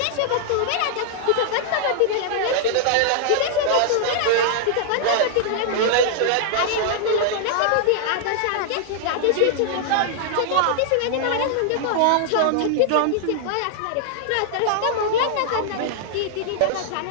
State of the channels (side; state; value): both; different; correlation -0.01